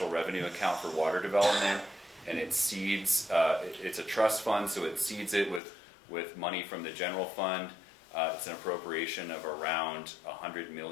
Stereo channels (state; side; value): drops out; right; at 5.6 s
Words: revenue account for water development, and it seeds, it's a trust fund, so it seeds it with money from the general fund. It's an appropriation of around $100